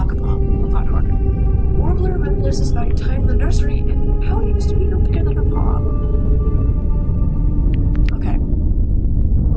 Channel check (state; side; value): identical; both; correlation 1.00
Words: a lot harder. Warbler reminisces about your time in the nursery and how you used to be no bigger than her paw. Okay.